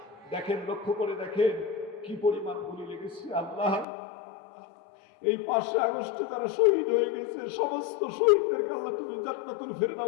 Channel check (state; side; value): drops out; right; at 3.9 s